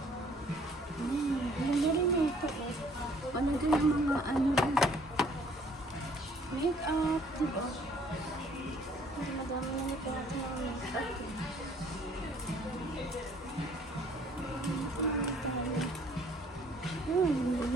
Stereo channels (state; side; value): normal; both; correlation 0.59